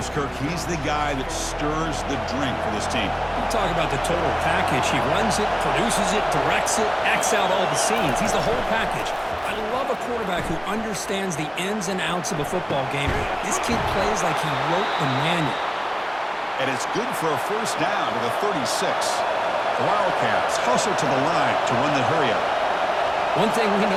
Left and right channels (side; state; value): both; identical; correlation 1.00